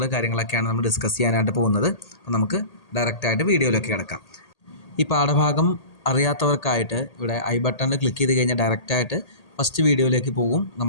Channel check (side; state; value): right; late; 1.8 ms